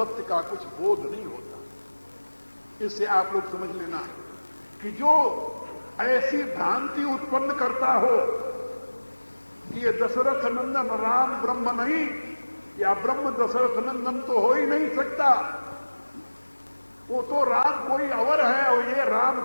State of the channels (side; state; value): both; inverted; correlation -1.00